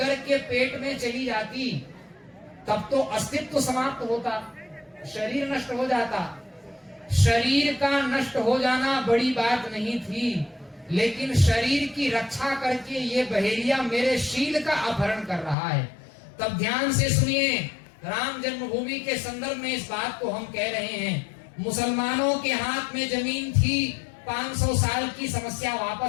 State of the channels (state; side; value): drops out; right; at 15.6 s